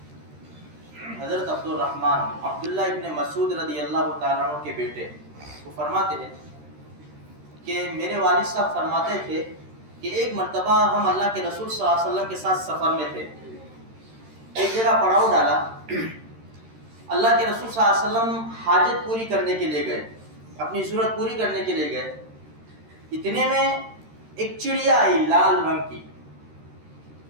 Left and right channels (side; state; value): left; late; 13 ms